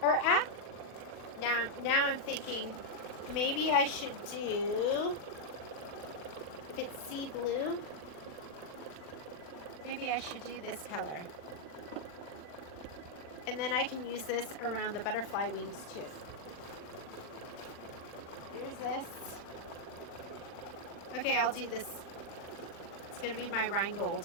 Or now I'm thinking maybe I should do, if it's sea blue, maybe I should do this color. And then I can use this around the butterfly wings too. Here's this. Okay, I'll do this. It's going to be my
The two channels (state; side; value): late; right; 40 ms